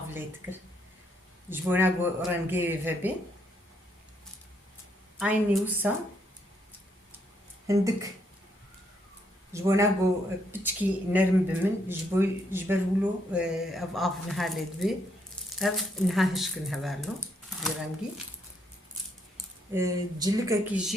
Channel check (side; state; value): both; normal; correlation 0.74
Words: جبونا جو رنجي فبي عيني وسا هندك جبونا جو بتشكي نرم بمن جبرولو اف نهالد بي اف نهاهشكن هبالو برنجي جلكا